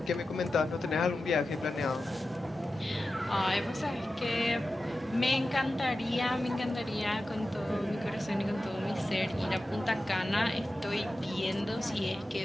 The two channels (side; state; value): both; normal; correlation 0.93